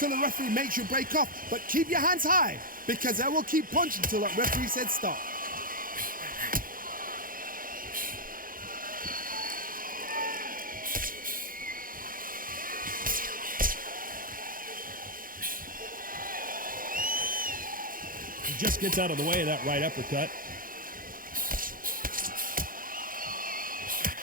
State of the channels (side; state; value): left; late; 0.41 ms